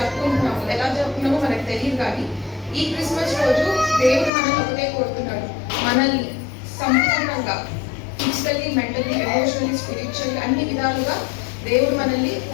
ఎలా జరుపుకున్నామో మనకు తెలియదు, కానీ ఈ క్రిస్మస్ రోజు దేవుడు మనల్ని ఒకటే కోరుతున్నాడు, మనల్ని సంపూర్ణంగా ఫిజికల్లీ, మెంటల్లీ, ఎమోషనల్లీ, స్పిరిచువల్లీ అన్ని విధాలుగా దేవుడు మనల్ని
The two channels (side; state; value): right; drops out; at 4.3 s